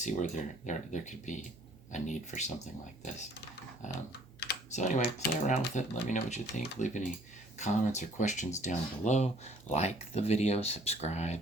where there could be a need for something like this. So anyway, play around with it. Let me know what you think. Leave any comments or questions down below. Like the video,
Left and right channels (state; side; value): normal; both; correlation 0.58